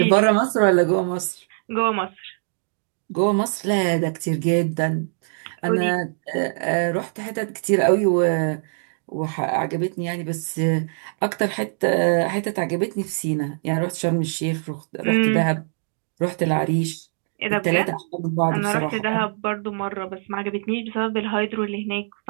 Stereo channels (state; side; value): silent; left; digital silence